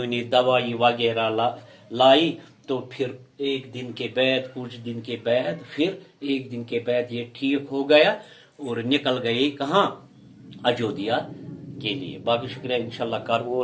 نے دوائی وغیرہ لائی تو پھر ایک دن کے بعد کچھ دن کے بعد پھر ایک دن کے بعد یہ ٹھیک ہو گیا اور نکل گئے کہاں اجودھیا کے لیے باقی شکریہ انشاءاللہ کر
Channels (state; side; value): identical; both; correlation 1.00